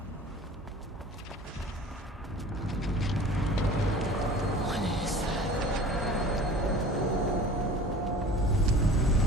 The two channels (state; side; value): normal; both; correlation 0.43